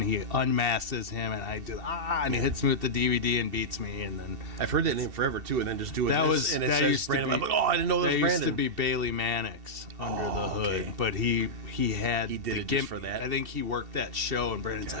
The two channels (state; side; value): late; left; 2.7 ms